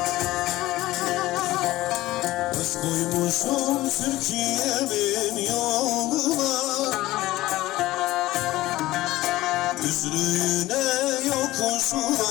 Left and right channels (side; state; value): right; quieter; 17.1 dB